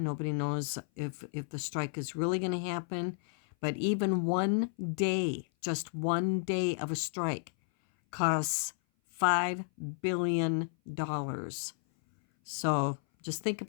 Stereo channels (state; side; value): silent; right; 56 dB below the other